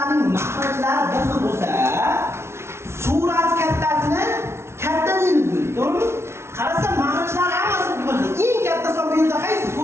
mahrajlari bir xil bo'lsa, surat kattasini katta deymiz, to'g'rimi? Qarasa mahrajlari hammasi bir xil. Eng katta son bu yerda qaysi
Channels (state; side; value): late; left; 0.13 ms